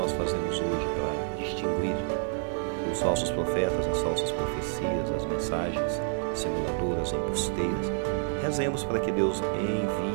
fazemos hoje para distinguir os falsos profetas, as falsas profecias, as mensagens simuladoras, embusteiras? Rezemos para que Deus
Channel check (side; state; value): left; silent; 57 dB below the other